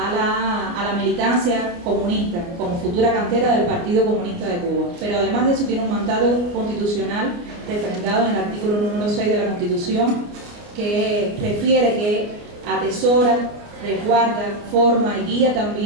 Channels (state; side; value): late; left; 29 ms